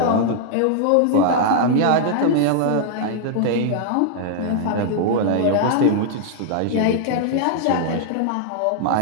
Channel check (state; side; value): different; both; correlation -0.01